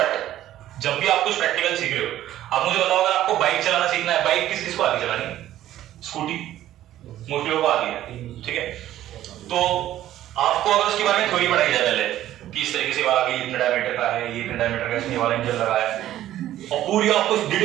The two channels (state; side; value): quieter; left; 13.1 dB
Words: जब भी आप कुछ प्रैक्टिकल सीख रहे हो, आप मुझे बताओ अगर आपको बाइक चलाना सीखना है, बाइक किस किस को आती है चलानी? स्कूटी मोस्टली लोगों को आती है, ठीक है? तो आपको अगर उसके बारे में थ्योरी पढ़ाई जाए पहले कि इस तरीके से वाला भी इतने डायमीटर का है, ये इतने डायमीटर का इसमें वाला इंजन लगा है, और पूरी आपको